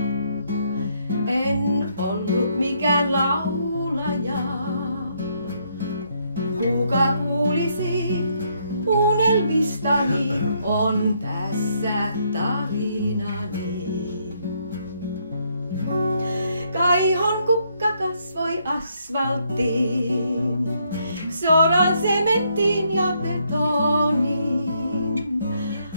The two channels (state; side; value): inverted; both; correlation -0.73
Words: en ollut mikään laulaja. Kuka kuulisi unelmistani, on tässä tarinani. Kaihon kukka kasvoi asfalttiin, soran sementtiin ja betoniin.